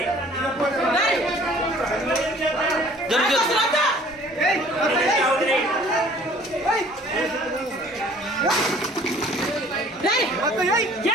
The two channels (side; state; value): both; normal; correlation 0.53